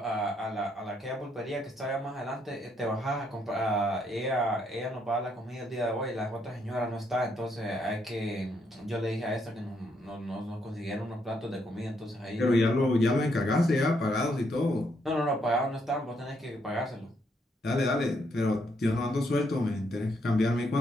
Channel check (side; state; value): both; normal; correlation 0.74